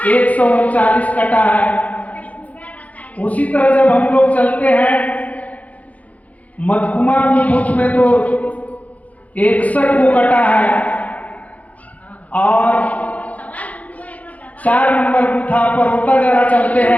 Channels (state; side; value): late; right; 0.071 ms